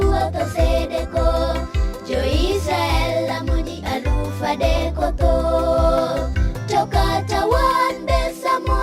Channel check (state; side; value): identical; both; correlation 1.00